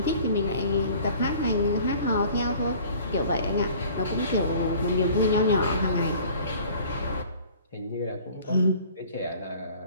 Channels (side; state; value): both; inverted; correlation -0.49